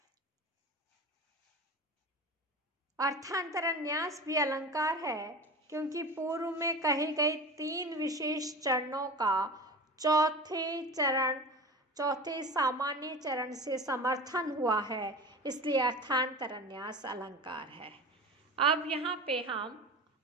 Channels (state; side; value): normal; both; correlation 0.32